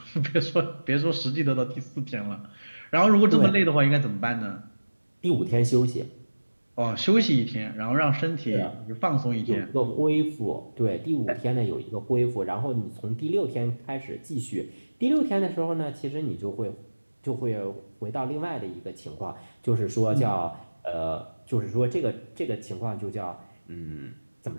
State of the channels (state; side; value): inverted; both; correlation -1.00